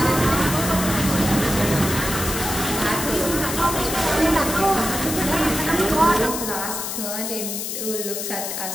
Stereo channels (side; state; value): left; noise; hiss, 4 dB below the sound